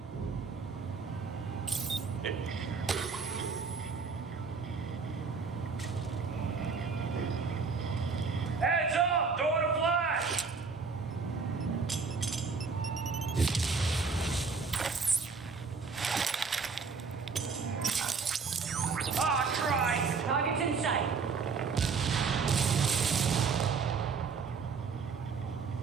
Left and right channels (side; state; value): left; quieter; 5.0 dB